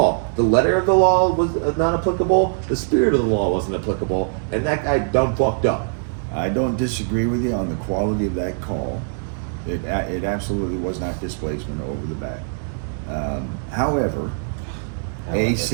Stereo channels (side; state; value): left; silent; digital silence